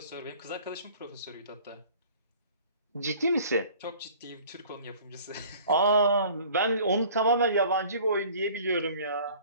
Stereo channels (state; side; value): inverted; both; correlation -0.49